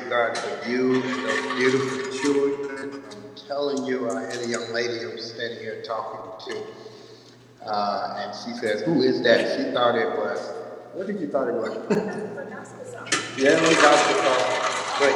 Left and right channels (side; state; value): both; identical; correlation 1.00